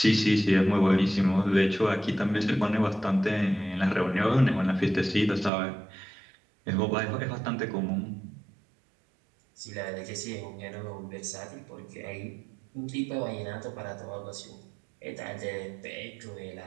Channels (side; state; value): left; drops out; at 5.5 s